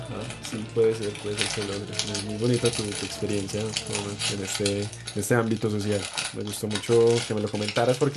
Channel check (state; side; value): identical; both; correlation 1.00